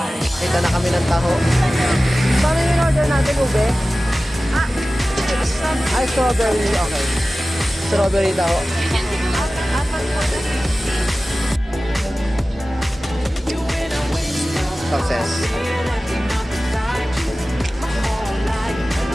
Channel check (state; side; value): normal; both; correlation 0.96